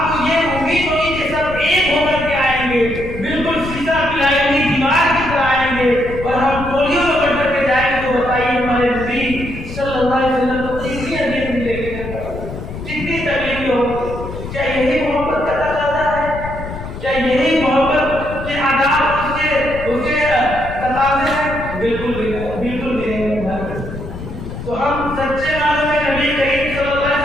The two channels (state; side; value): noise; left; rumble, 9 dB below the sound